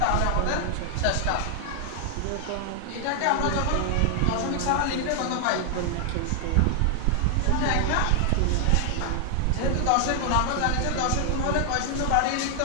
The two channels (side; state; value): both; different; correlation 0.00